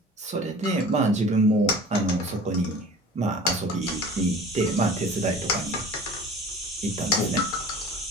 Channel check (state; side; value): normal; both; correlation 0.42